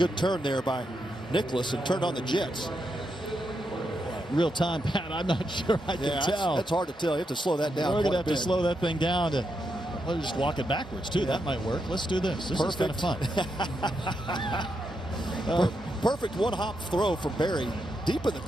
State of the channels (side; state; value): both; normal; correlation 0.83